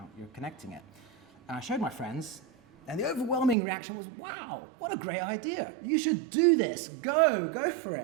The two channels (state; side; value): drops out; left; at 3.6 s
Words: You're connecting it. And I showed my friends, and the overwhelming reaction was, wow, what a great idea. You should do this. Go for